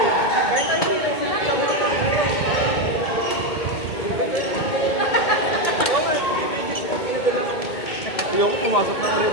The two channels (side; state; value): right; late; 2.2 ms